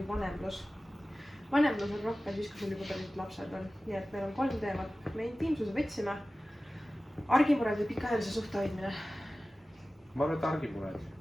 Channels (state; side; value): normal; both; correlation 0.96